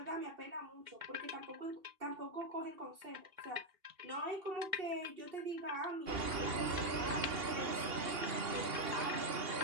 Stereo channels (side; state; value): left; late; 2.8 ms